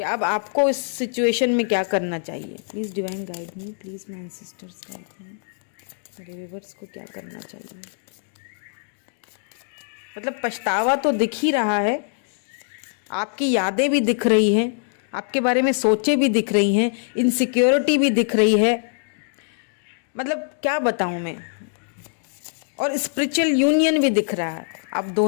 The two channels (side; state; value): right; silent; digital silence